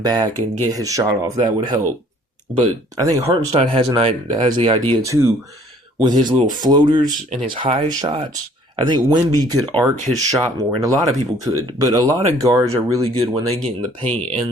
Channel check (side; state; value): both; normal; correlation 0.57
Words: back, and get his shot off. That would help. But I think Hartenstein has the idea too, with his little floaters and his high shots. I think Wemby could arc his shot more, and a lot of people could. But a lot of guards are really good when they get in the paint